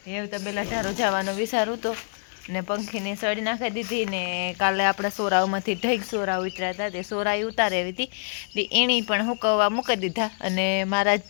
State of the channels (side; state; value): right; silent; 61 dB below the other